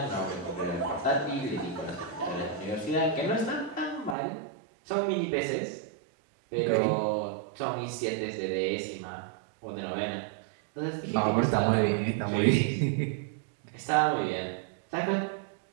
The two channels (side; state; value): left; drops out; at 4.2 s